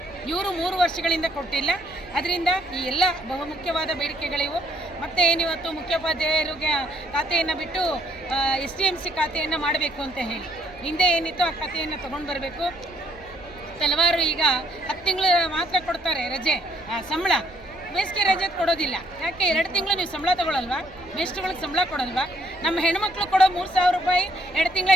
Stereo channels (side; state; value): right; noise; rumble, 22 dB below the sound